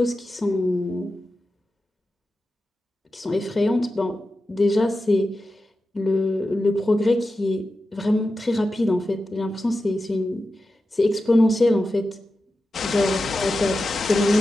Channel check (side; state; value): both; normal; correlation 0.92